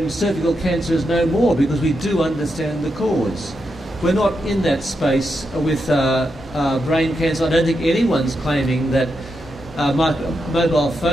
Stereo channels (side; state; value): both; normal; correlation 0.85